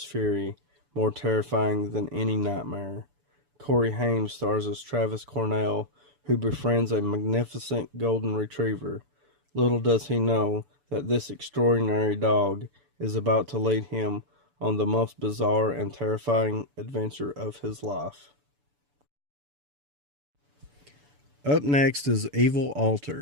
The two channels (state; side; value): late; left; 6.9 ms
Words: fury, more terrifying than any nightmare. Corey Haim stars as Travis Cornell, who befriends a magnificent golden retriever. Little does he know that this extraordinary dog is about to lead him on the most bizarre and terrifying adventure of his life. Up next is Evil